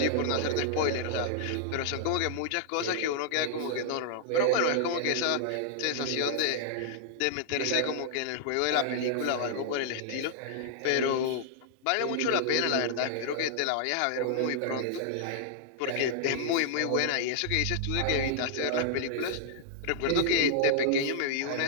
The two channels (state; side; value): different; both; correlation -0.01